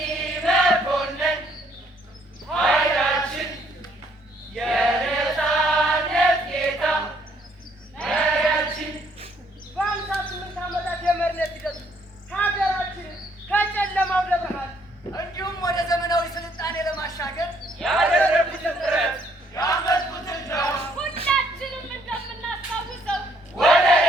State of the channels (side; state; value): both; normal; correlation 0.67